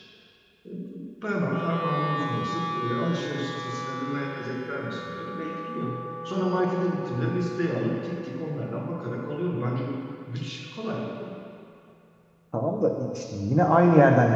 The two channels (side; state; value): both; identical; correlation 1.00